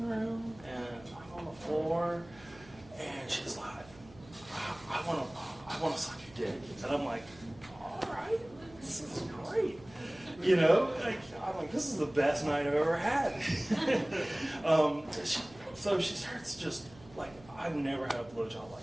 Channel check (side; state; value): right; noise; hum, 22 dB below the sound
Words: room, and I'm on the floor. And she's like, I want to suck your dick. And I'm like, all right, this is great. I'm like, this is the best night I've ever had. So she starts just like, I've never had a blowjob